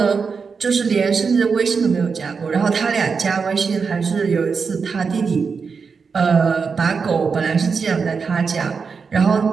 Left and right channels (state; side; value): quieter; left; 5.4 dB